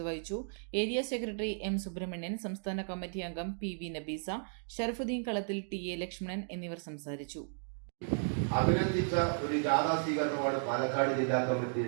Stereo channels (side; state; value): left; silent; digital silence